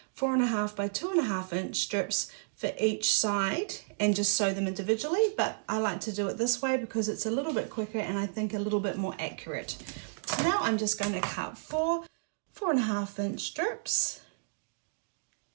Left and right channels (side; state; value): left; silent; digital silence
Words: by 2.5 inch strips for each side and just sew them individually. But I like to do it this way because it's a little bit quicker and I think a little bit more accurate. So now I'm just going to cut 4.5 inch strips,